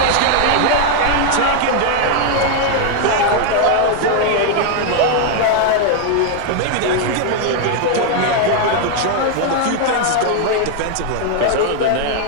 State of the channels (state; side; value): different; both; correlation 0.00